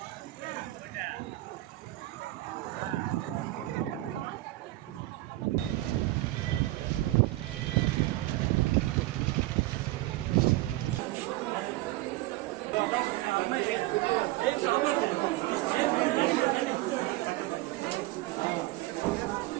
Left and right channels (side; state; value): left; quieter; 18.1 dB